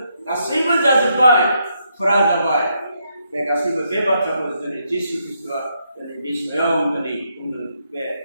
गासैबो जाजोब्बाय, फुरा जाबाय। बे गासैबो बे बाथ्राखौ दिनै जिसु ख्रीष्टआ दिनै बे स्वयं दिनै बुंदों। बे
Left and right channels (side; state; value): both; inverted; correlation -0.77